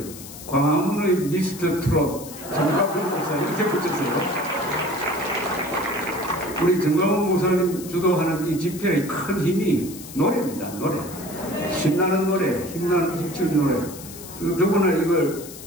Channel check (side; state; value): left; noise; hiss, 14 dB below the sound